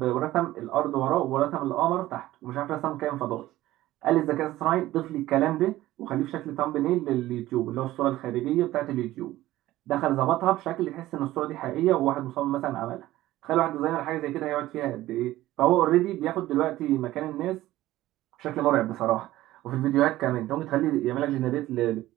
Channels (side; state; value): left; quieter; 15.8 dB